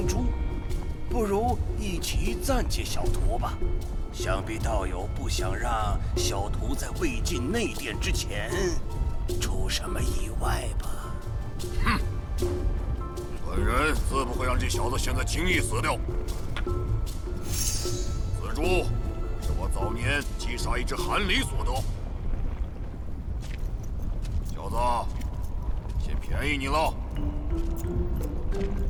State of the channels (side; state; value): both; identical; correlation 1.00